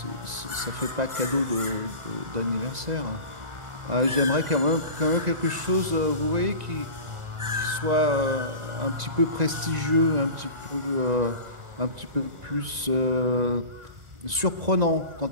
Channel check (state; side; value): late; left; 1.9 ms